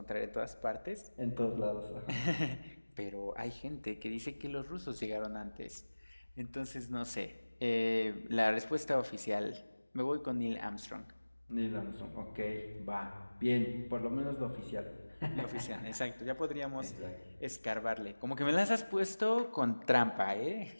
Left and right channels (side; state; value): both; inverted; correlation -1.00